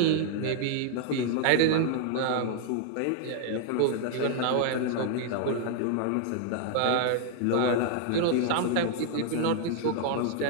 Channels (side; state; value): both; different; correlation 0.00